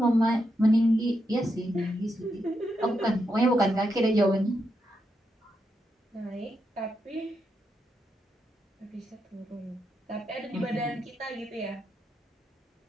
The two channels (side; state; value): both; normal; correlation 0.83